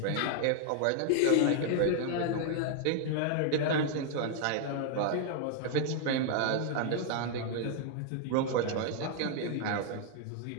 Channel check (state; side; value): different; both; correlation 0.00